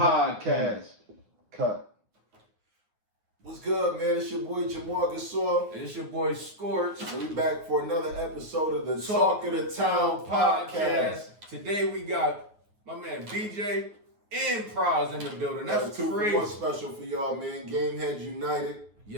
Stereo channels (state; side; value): late; left; 9.5 ms